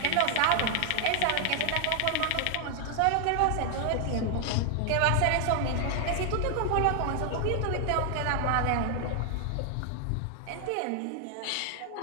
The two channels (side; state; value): both; different; correlation 0.00